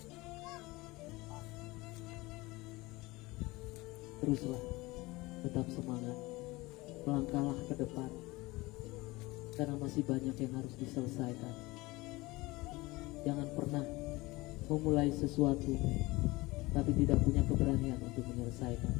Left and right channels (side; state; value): right; quieter; 21.6 dB